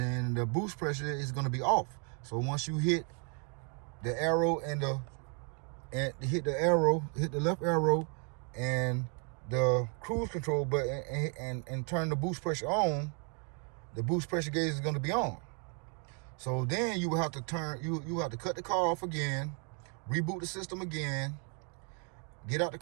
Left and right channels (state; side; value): quieter; left; 38.6 dB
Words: the boost pressure is gonna be off. So once you hit the arrow hit the left arrow and the cruise control button and turn the boost pressure on, the boost pressure gauge is going to be on. So then you will have to cut the car off again, reboot the system again, get out the